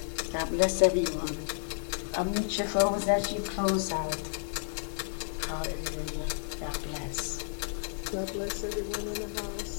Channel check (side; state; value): right; silent; 57 dB below the other